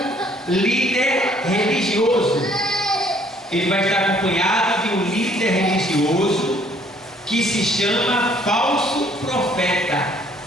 líder religioso. Ele vai estar acompanhado de um líder religioso que se chama falso profeta.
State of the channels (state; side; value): normal; both; correlation 0.61